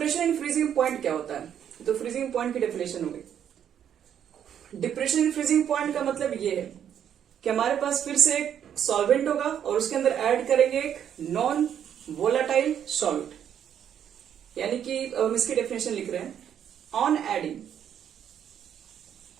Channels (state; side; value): quieter; left; 9.3 dB